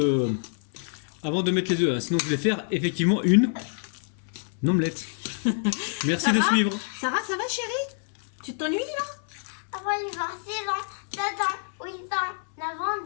mettre les œufs. Hein. Sinon je vais faire effectivement une omelette. Merci de suivre. Sarah, ça va chérie? Tu t'ennuies là? Avant, il va 6 ans, 7 ans, 8 ans, 9 ans,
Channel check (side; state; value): right; silent; 60 dB below the other